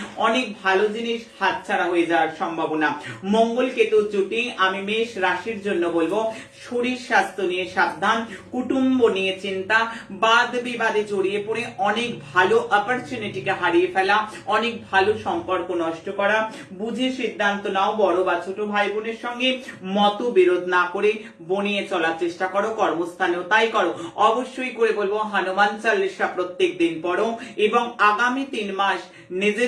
অনেক ভালো জিনিস হাতছাড়া হয়ে যাওয়ার সম্ভাবনা। মঙ্গল কেতু জুটি আমি মেষ রাশির জন্য বলবো শরীর স্বাস্থ্য নিয়ে সাবধান, কুটুম্ব নিয়ে চিন্তা, বাদ বিবাদে জড়িয়ে পড়ে অনেক ভালো অপরচুনিটিকে হারিয়ে ফেলা, অনেক ভালো সম্পর্ক নষ্ট করা। বুঝে সিদ্ধান্ত নাও। বড় বা ছোট ভাই বোনের সঙ্গে মতবিরোধ না করে বনিয়ে চলার চেষ্টা করো, কর্মস্থানেও তাই করো। অবশ্যই করে বলবো হনুমান চালিসা প্রত্যেক দিন পড়ো এবং আগামী 3 মাস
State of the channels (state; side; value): identical; both; correlation 1.00